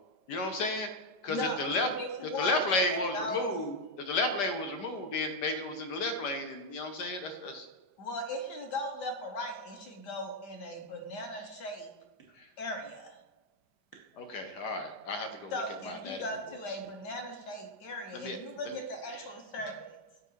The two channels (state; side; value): late; right; 5.0 ms